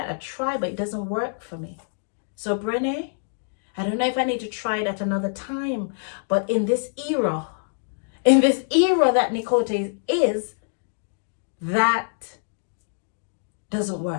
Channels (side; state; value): right; silent; digital silence